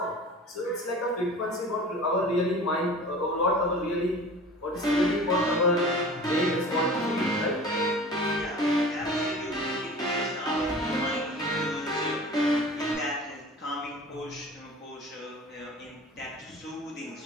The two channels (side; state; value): both; normal; correlation 0.40